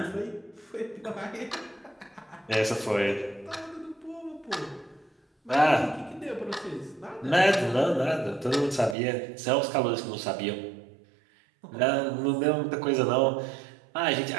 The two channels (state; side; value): drops out; left; at 9.0 s